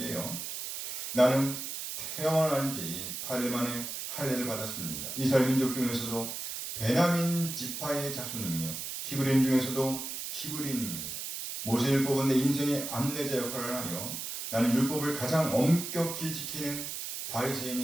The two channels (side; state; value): right; noise; hiss, 6 dB below the sound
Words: 나는 태어난 지 8일 만에 할례를 받았습니다. 이스라엘 민족 중에서도 베냐민 지파의 자손이며 히브리인 중에서도 히브리인입니다. 모세율법은 내 인생의 안내자 역할을 하며 나는 율법을 가장 엄격히 지키는